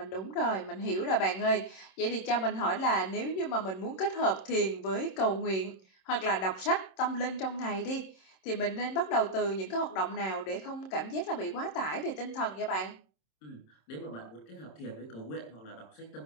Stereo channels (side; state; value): right; late; 26 ms